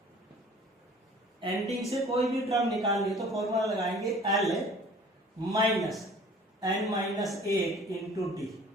एंडिंग से कोई भी टर्म निकालनी तो फॉर्मूला लगाएंगे L minus n minus 1 into d,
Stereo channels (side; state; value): both; normal; correlation 0.49